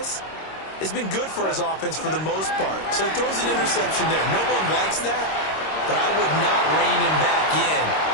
has been good for his offense for the most part. So he throws an interception there. No one likes that, but I would not rein him back in.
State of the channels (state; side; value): late; right; 26 ms